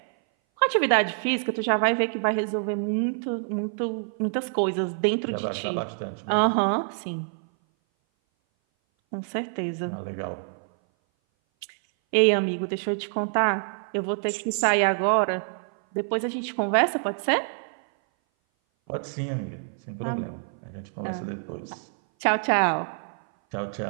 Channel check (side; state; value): left; silent; 58 dB below the other